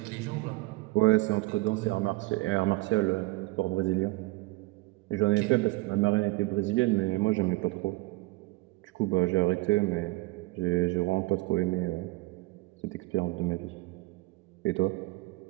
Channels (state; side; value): quieter; left; 22.5 dB